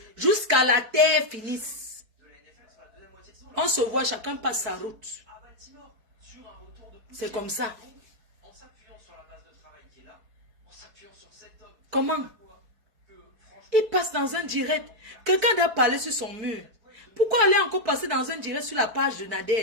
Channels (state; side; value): late; left; 4.6 ms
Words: Jusqu'à la terre finisse. On se voit, chacun passe sa route. C'est comme ça. Comment? Il passe dans un direct. Quelqu'un doit parler sur son mur. Pourquoi aller encore passer dans un direct sur la page de